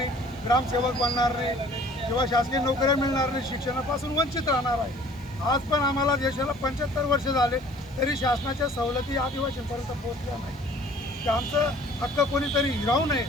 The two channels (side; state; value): right; noise; hiss, 28 dB below the sound